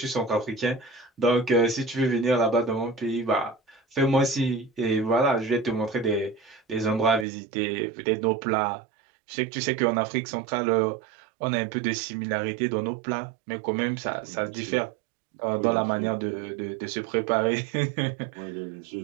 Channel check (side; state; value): left; drops out; at 7.2 s